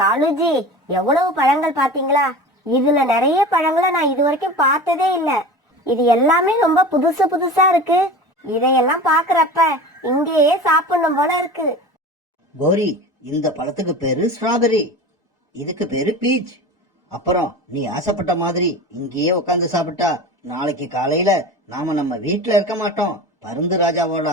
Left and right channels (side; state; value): both; normal; correlation 0.33